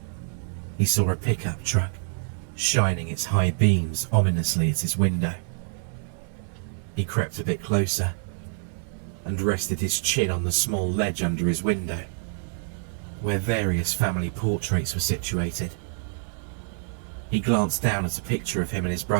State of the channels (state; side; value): silent; left; 61 dB below the other